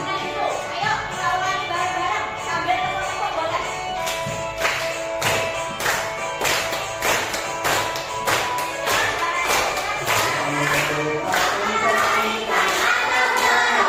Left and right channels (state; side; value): identical; both; correlation 1.00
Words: itu. Ayo, lawan bareng-bareng sambil tepuk-tepuk boleh.